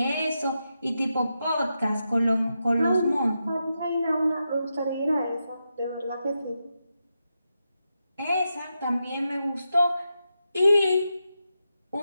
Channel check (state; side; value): inverted; both; correlation -0.87